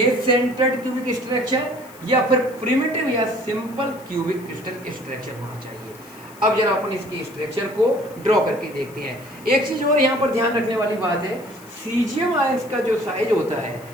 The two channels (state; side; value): noise; left; hiss, 23 dB below the sound